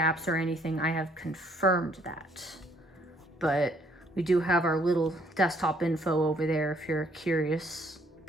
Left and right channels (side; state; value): both; normal; correlation 0.65